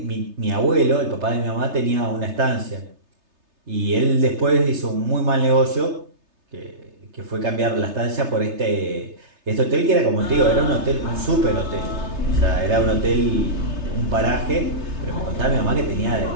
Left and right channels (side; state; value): left; late; 3.3 ms